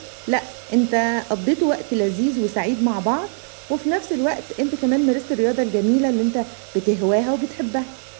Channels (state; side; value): silent; left; 61 dB below the other